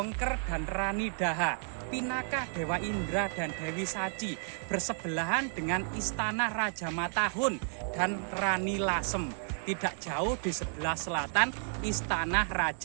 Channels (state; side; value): silent; left; 56 dB below the other